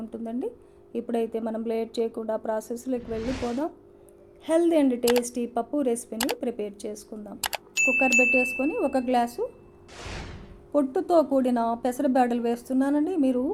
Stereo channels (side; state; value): both; identical; correlation 1.00